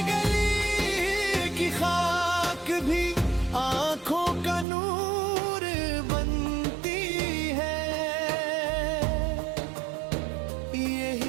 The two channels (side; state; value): left; drops out; at 4.7 s